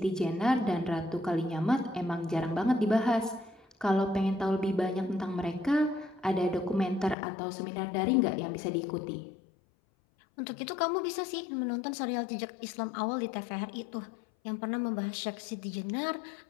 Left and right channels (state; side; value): drops out; right; at 7.2 s